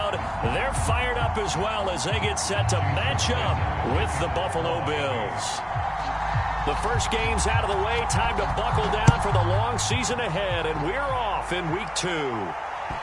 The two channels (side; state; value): both; identical; correlation 1.00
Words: They're fired up as well as they get set to match up with the Buffalo Bills. The first game's out of the way. Time to buckle down for the long season ahead, and we're off in week 2.